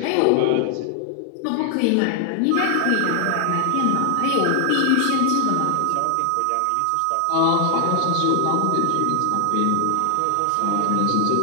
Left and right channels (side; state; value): both; different; correlation 0.00